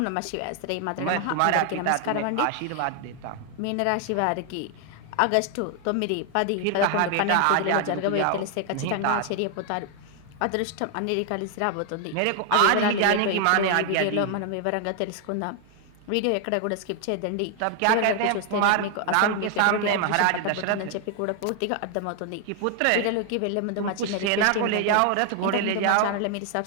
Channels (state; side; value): different; both; correlation 0.00